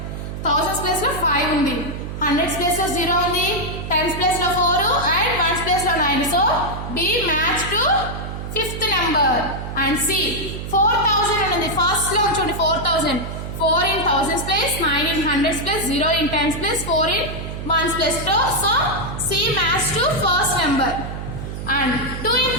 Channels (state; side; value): noise; right; hum, 7 dB below the sound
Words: థౌసండ్స్ ప్లేస్ లో 5 ఉంది 100 ప్లేస్ లో 0 ఉంది 10 ప్లేస్ లో 4 అండ్ 1 ప్లేస్ లో 9 so B match to fifth number and C 4000 ఉంది ఫస్ట్ లో చూడండి 4000 4 in thousands place 9 in hundreds place 0 in tens place 4 in ones place so C match to first number and 2 in